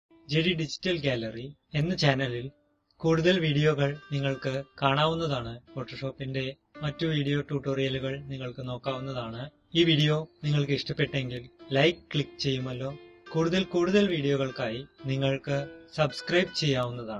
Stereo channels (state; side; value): identical; both; correlation 1.00